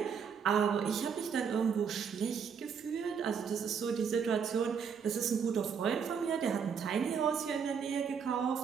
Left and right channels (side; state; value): left; quieter; 6.7 dB